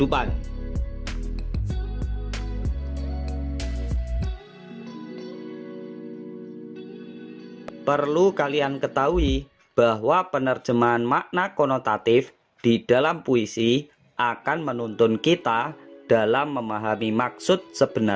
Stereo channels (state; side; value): identical; both; correlation 1.00